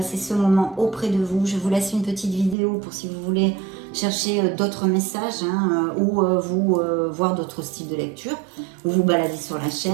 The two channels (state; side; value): drops out; left; at 2.6 s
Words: ce moment auprès de vous. Je vous laisse une petite vidéo pour si vous voulez chercher d'autres messages ou vous voir d'autres styles de lecture ou vous balader sur la